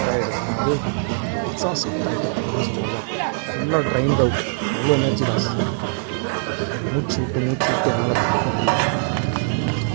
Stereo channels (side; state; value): left; silent; 64 dB below the other